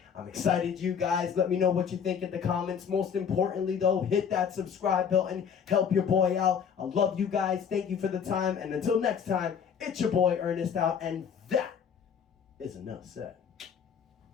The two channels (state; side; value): quieter; right; 7.3 dB